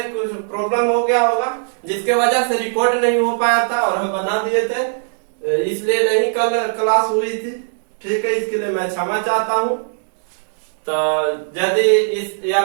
कुछ प्रॉब्लम हो गया होगा जिसके वजह से रिकॉर्ड नहीं हो पाया था और हम बना दिए थे इसलिए नहीं कल क्लास हुई थी। ठीक है, इसके लिए मैं क्षमा चाहता हूँ। तो यदि इस या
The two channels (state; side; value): silent; left; 67 dB below the other